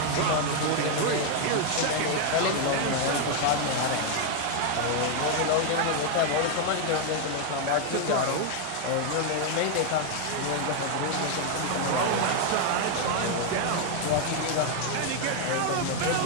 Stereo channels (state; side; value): different; both; correlation 0.00